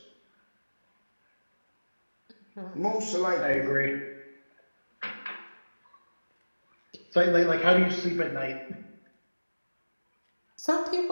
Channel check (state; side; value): inverted; both; correlation -1.00